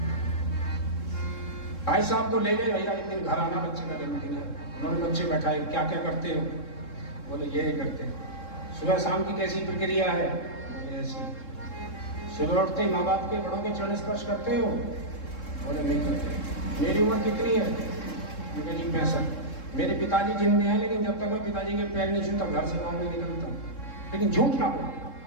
भाई साहब को ले गए, भैया एक दिन घर आना, बच्चे का जन्मदिन है, उन्होंने बच्चे बैठाए, क्या क्या करते हो, बोले ये करते हैं। सुबह शाम की कैसी प्रक्रिया है, बोले ऐसी। सुबह उठते ही माँ बाप के, बड़ों के चरण स्पर्श करते हो, बोले नहीं करते। मेरी उम्र कितनी है, मुझे जी 65। मेरे पिताजी जिंदे हैं, लेकिन जब तक मैं पिताजी के पैर नहीं छूता घर से बाहर नहीं निकलता। लेकिन झूठ ना बोलना,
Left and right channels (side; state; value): right; late; 3.7 ms